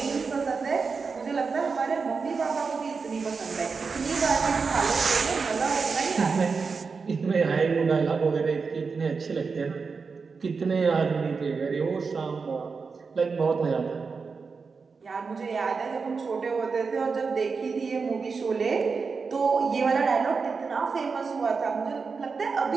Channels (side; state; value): left; quieter; 4.9 dB